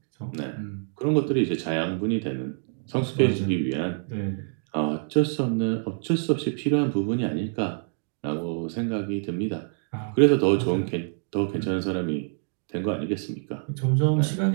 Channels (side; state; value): left; silent; digital silence